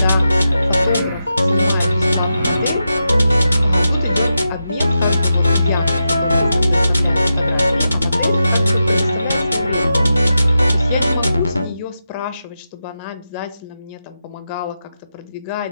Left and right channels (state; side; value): inverted; both; correlation -0.88